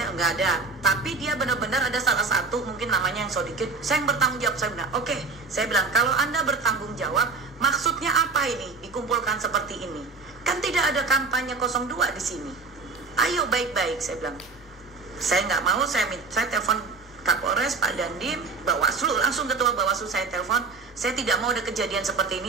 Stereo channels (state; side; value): quieter; left; 4.1 dB